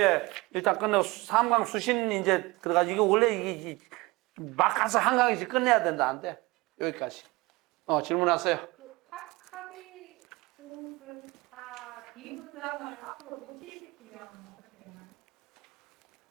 일단 끝내고 삼강 수신 이제 들어가지고 이거 원래 이게 막 가서 한강에서 끝내야 된다. 안 돼. 여기까지. 질문하세요. 그 학위 수업을 다 비문장을 앞으로 노출시키면 어떻게 되나요?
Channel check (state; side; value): quieter; left; 22.8 dB